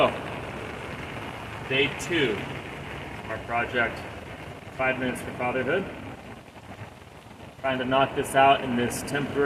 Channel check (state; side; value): identical; both; correlation 1.00